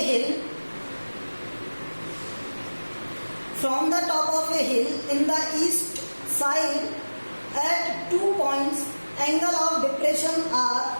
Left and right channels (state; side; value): inverted; both; correlation -1.00